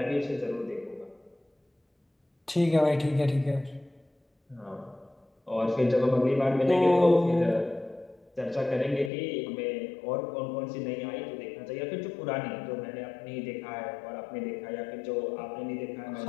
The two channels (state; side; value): drops out; right; at 9.1 s